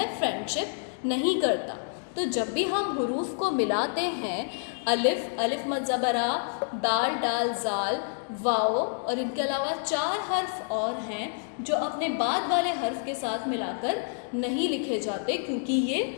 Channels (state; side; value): silent; right; digital silence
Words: फ्रेंडशिप नहीं करता। तो जब भी हम हुरूफ को मिलाते हैं, अलिफ, अलिफ मद ज़बरा, दाल, डाल, जाल, वाव, और इनके अलावा 4 हर्फ और हैं जो अपने बाद वाले हर्फ के साथ मिलाकर नहीं लिखे जाते, क्योंकि